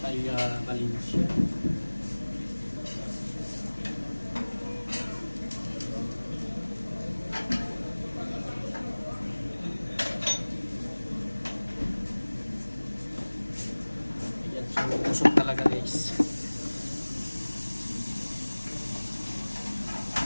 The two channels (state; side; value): inverted; both; correlation -1.00